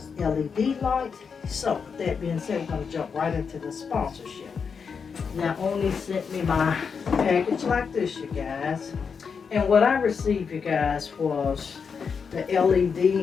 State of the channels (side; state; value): right; quieter; 6.0 dB